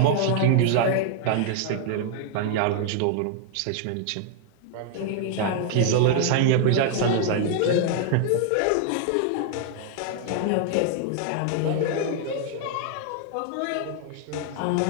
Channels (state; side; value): different; both; correlation 0.00